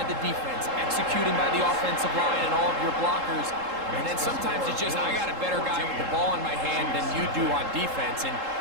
the defense, executing by the offensive line and all of your blockers. And then sometimes it's just, I got a better guy with the ball in my hand than you do on defense. And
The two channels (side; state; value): left; late; 3.7 ms